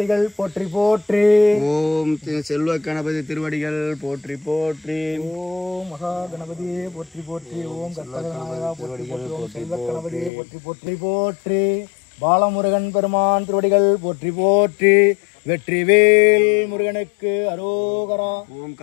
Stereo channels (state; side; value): drops out; right; at 10.3 s